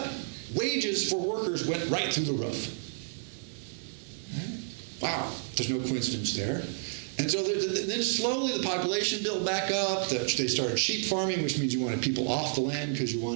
Wages for workers went right through the roof. Wow, there's no coincidence there. And so then slowly the population built back up. They started sheep farming, which means you wanted people off the land because you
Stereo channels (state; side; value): silent; left; digital silence